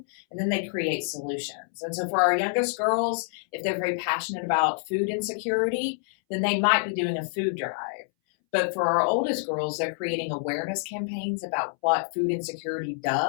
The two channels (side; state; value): right; silent; 60 dB below the other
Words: and then they create solutions. And so for our youngest girls, if they're very passionate about food insecurity, then they might be doing a food drive. But for our oldest girls, they're creating awareness campaigns about what food insecurity